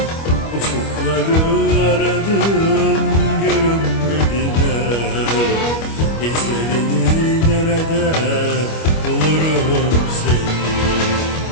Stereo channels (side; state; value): right; late; 25 ms